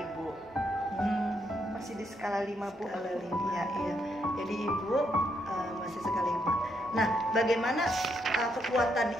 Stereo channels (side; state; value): both; normal; correlation 0.77